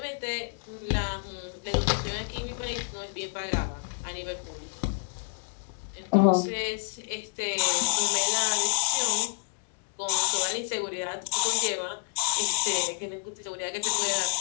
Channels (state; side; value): silent; right; digital silence